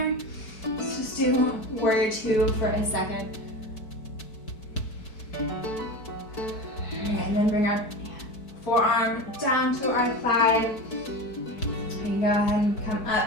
Let's just do warrior two for a second. And then bring our forearm down to our thigh. And go ahead and come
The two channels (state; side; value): late; right; 4.6 ms